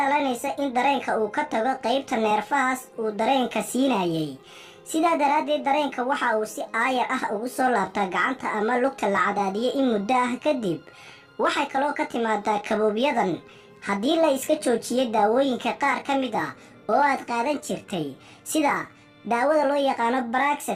in dareenka uu ka tago qaybta neerfahaas uu dareenka siinayay sidaa daraaddeed dareenka waxa uu si aayar ah ugu soo laabtaa gacanta ama lugta la cadaadiyay in muddo ah kadib waxay kaloo ka timaadaa kaboobiyadan haddii la iska joojiyay daawooyinka qaar ka mid ah oo aad qaadan jirtay sida daawada loo yaqaano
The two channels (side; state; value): both; identical; correlation 1.00